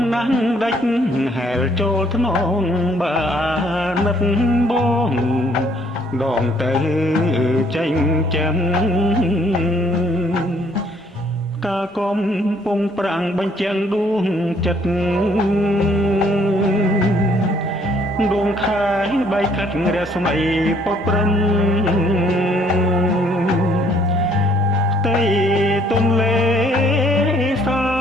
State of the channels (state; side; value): normal; both; correlation 0.64